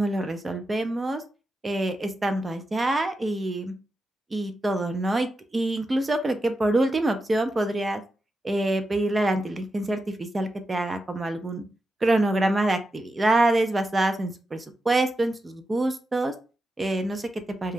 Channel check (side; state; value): both; normal; correlation 0.89